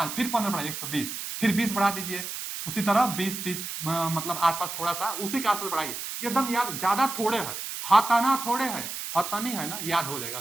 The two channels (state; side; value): noise; right; hiss, 6 dB below the sound